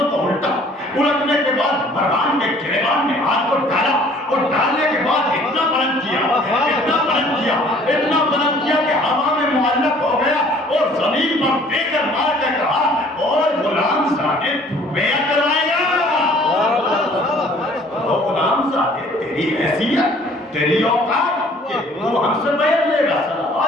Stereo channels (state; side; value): normal; both; correlation 0.55